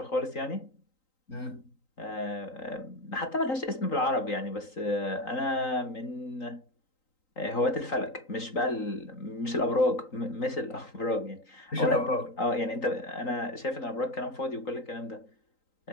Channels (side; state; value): right; late; 3.9 ms